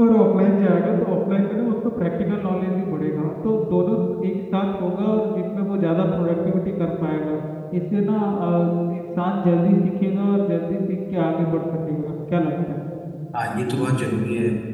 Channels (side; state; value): both; identical; correlation 1.00